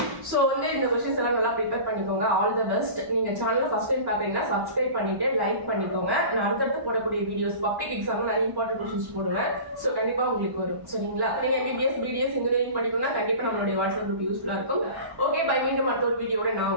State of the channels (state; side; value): late; left; 1.1 ms